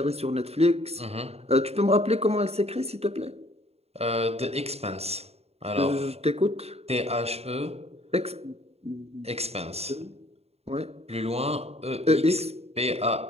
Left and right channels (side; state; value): left; late; 0.30 ms